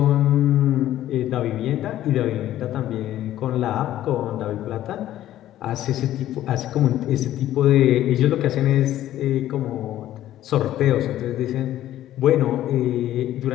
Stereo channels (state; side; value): quieter; right; 13.1 dB